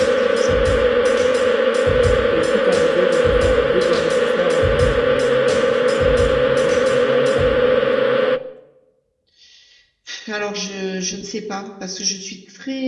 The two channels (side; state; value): both; identical; correlation 1.00